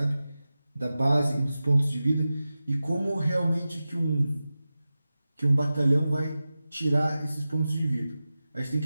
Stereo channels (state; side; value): inverted; both; correlation -0.95